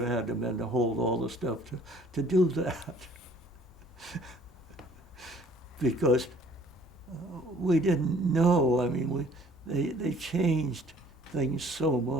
had to been to hold all the stuff to do that. Because we didn't know. I mean, they changed things so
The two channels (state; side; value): normal; both; correlation 0.56